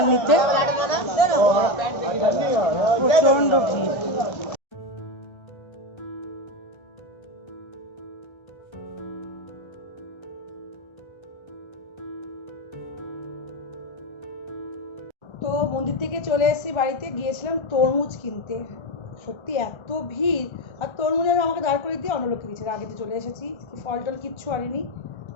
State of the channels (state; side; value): late; right; 1.3 ms